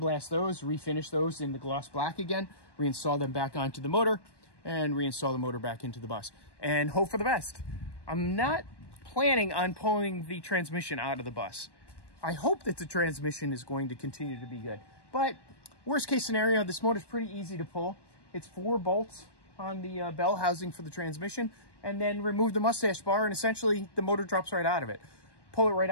those, refinish those in the gloss black again, reinstall them back onto the motor, and reinstall the motor back into the bus, and hope for the best. I'm not planning on pulling the transmission out of the bus. I hope that the transmission is going to continue to be good, but worst case scenario, this motor's pretty easy to pull. It's 4 bolts on the bell housing for the transmission, and then remove the mustache bar, and essentially the motor drops right out of it. pull it right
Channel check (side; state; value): right; late; 1.1 ms